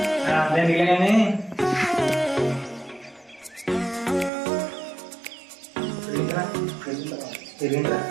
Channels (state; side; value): drops out; left; at 4.3 s